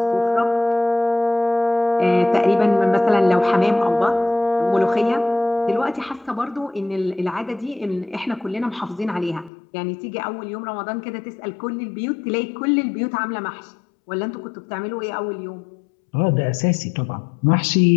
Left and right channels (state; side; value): drops out; right; at 9.5 s